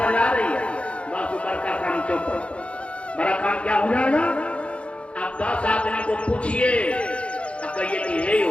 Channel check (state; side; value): late; right; 0.060 ms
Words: आ रही है? बस ऊपर का काम चौपट, बड़ा काम क्या हो जाएगा? आप 10 आदमी को पूछिए, आप कहिए कि हे हो